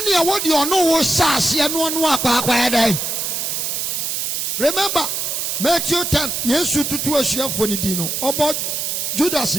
what you know was sassy and one walk by day. Remember, Matthew 10, yes, you to a share for the dino about Judas.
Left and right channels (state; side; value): noise; right; hiss, 2 dB below the sound